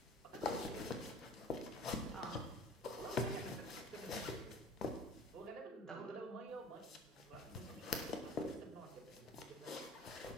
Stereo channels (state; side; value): normal; both; correlation 0.45